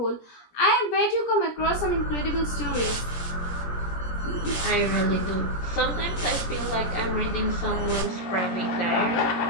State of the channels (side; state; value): right; late; 17 ms